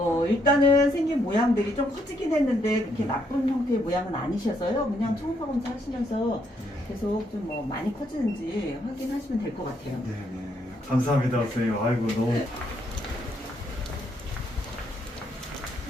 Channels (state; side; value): normal; both; correlation 0.74